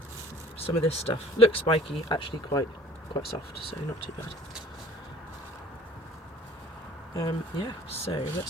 some of this stuff. Looks spiky, actually quite soft, so not too bad. Yeah, so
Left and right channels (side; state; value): both; normal; correlation 0.50